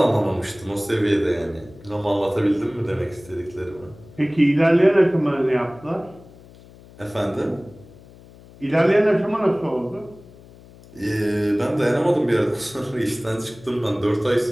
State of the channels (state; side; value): noise; left; hum, 22 dB below the sound